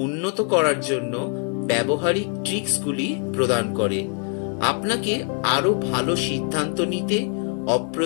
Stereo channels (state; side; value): quieter; right; 38.3 dB